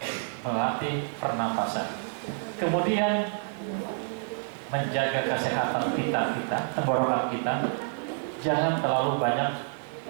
melatih pernapasan. Kemudian menjaga kesehatan kita, tenggorokan kita, jangan terlalu banyak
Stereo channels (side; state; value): left; silent; 59 dB below the other